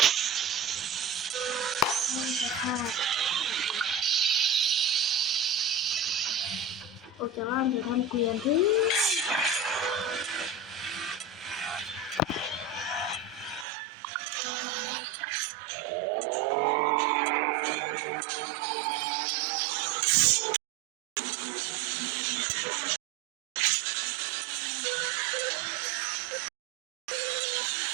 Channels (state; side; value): drops out; left; at 13.7 s